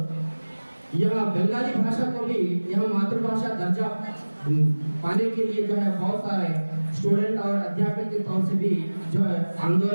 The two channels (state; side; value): inverted; both; correlation -1.00